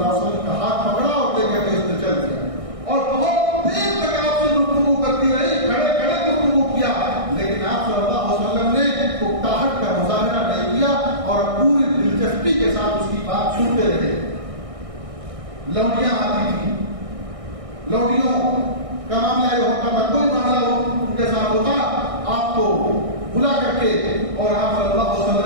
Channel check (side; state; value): left; late; 1.6 ms